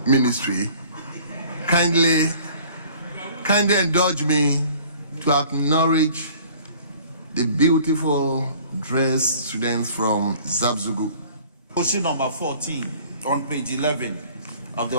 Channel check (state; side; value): inverted; both; correlation -0.51